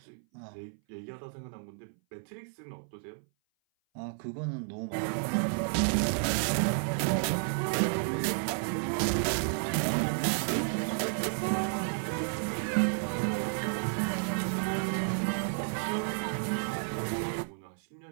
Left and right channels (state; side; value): silent; left; 56 dB below the other